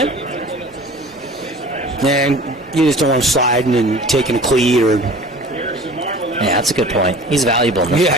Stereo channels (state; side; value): normal; both; correlation 0.43